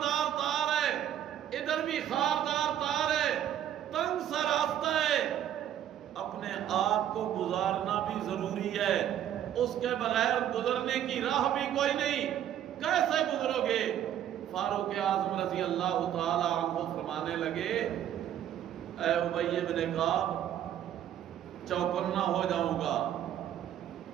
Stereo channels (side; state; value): left; quieter; 10.8 dB